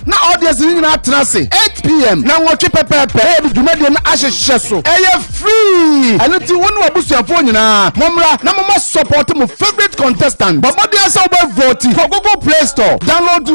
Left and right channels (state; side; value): inverted; both; correlation -1.00